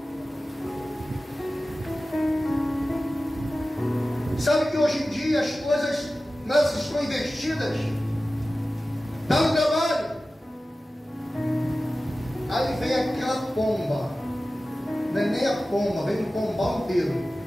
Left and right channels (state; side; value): normal; both; correlation 0.95